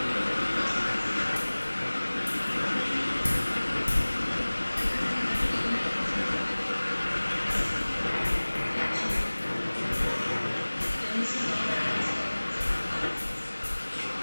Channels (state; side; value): inverted; both; correlation -1.00